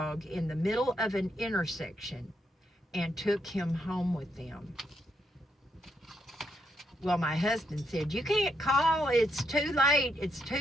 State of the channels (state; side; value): normal; both; correlation 0.78